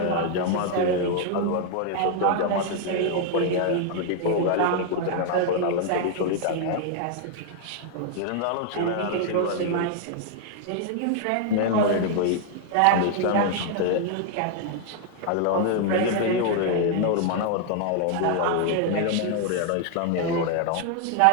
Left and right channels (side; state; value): both; different; correlation 0.00